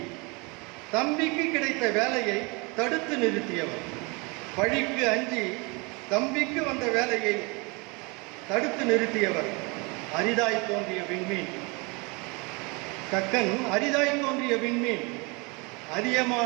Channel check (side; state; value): left; quieter; 28.6 dB